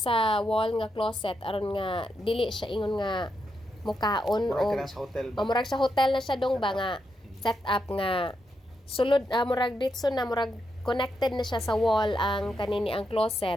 wall nga closet aron nga dili siya ingon nga mukaon o murag sa hotel na siya dong ba nga set up nga sulod murag ditso na murag connected na siya sa wall ang kanini ang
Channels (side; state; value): both; normal; correlation 0.83